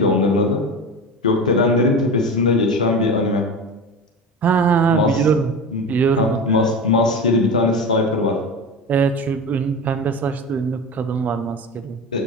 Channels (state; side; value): normal; both; correlation 0.28